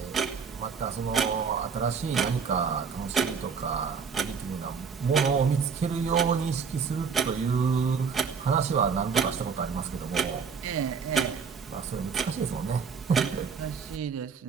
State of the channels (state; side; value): quieter; left; 5.9 dB